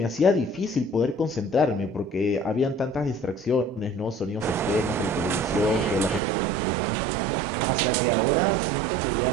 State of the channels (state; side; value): drops out; left; at 6.2 s